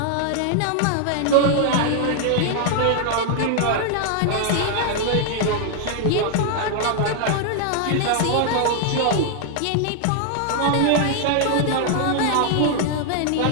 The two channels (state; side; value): different; both; correlation 0.00